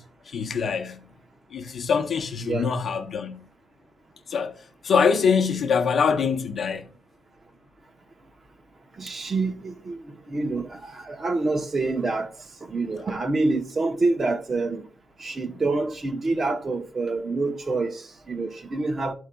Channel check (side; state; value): both; normal; correlation 0.80